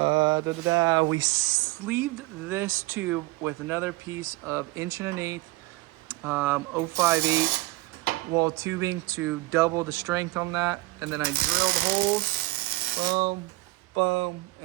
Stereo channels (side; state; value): left; quieter; 20.7 dB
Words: sleeved this tube with another piece of 1 1/8 058 wall tubing to double the strength on that, and then I drilled holes, boom, boom,